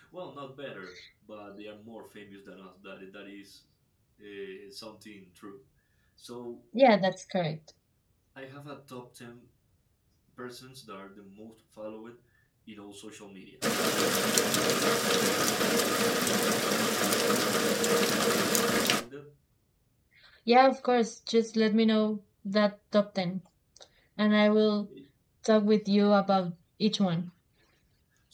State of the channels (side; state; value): both; identical; correlation 1.00